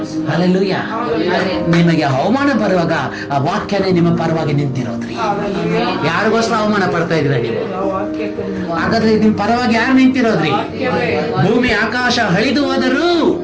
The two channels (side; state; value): both; identical; correlation 1.00